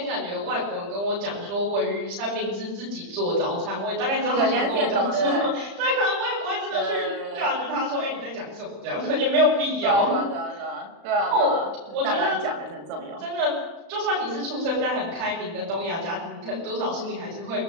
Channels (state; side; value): late; left; 35 ms